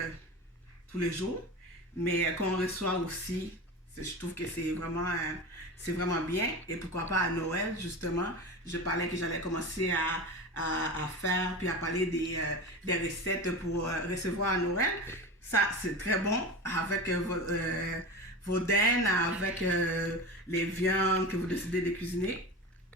tous les jours, mais qu'on reçoit aussi, je trouve que c'est vraiment bien. Et pourquoi pas à Noël, justement, je parlais que j'allais commencer à faire, puis à parler des recettes pour recevoir à Noël. Ça, c'est très bon avec vos dents, avec les viandes que vous décidez de cuisiner.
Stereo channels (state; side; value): normal; both; correlation 0.28